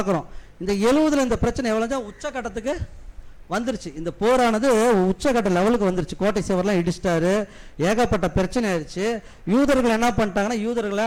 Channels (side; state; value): both; identical; correlation 1.00